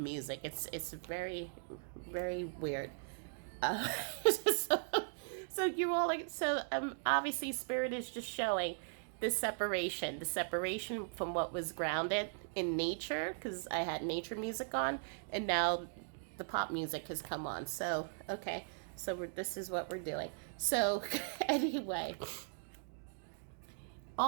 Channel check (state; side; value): silent; left; digital silence